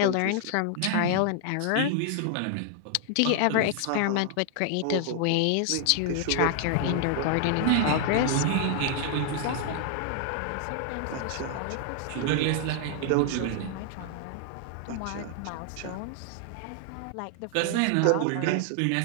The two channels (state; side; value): different; both; correlation 0.00